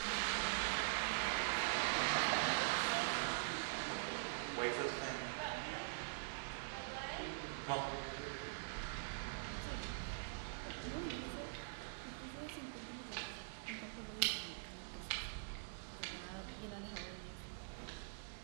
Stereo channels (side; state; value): left; silent; digital silence